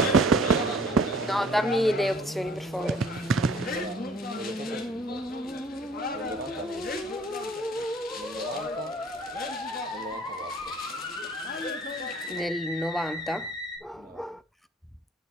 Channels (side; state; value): both; normal; correlation 0.53